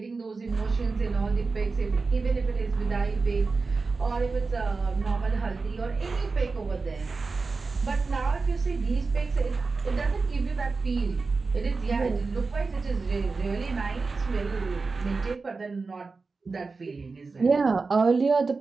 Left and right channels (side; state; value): left; quieter; 4.2 dB